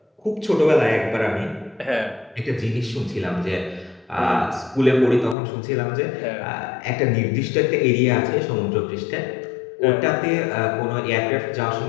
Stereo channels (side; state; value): right; drops out; at 5.4 s